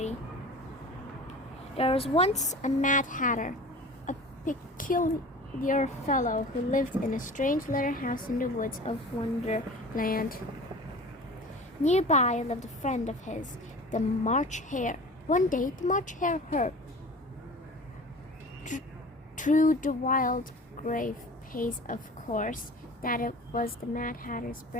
There was once a Mad Hatter, a peculiar fellow who lived in a strange little house in the woods of Wonderland. Nearby lived a friend of his, the March Hare. One day, the March Hare heard through the wild grave pace, of course, that it was the Mad Hatter's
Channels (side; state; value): both; normal; correlation 0.39